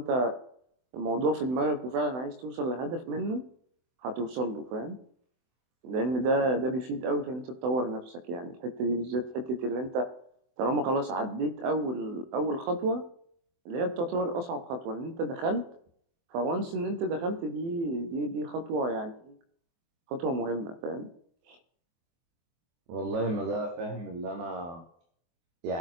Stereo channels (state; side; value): late; left; 24 ms